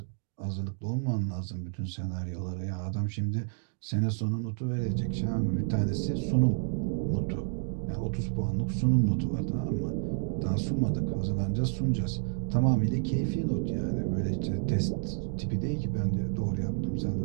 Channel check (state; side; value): silent; left; 58 dB below the other